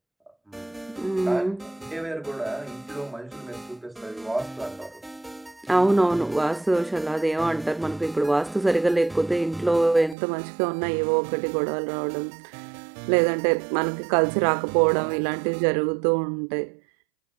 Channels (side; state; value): left; drops out; at 10.2 s